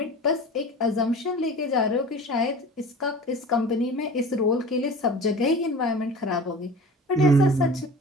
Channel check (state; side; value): normal; both; correlation 0.38